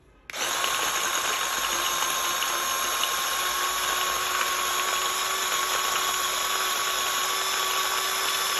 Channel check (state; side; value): identical; both; correlation 1.00